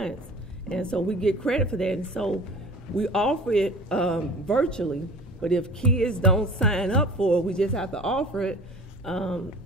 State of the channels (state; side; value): normal; both; correlation 0.42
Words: And so we get credit for that. And so we offer it virtually, but if kids don't sign up for it, we just have to offer it,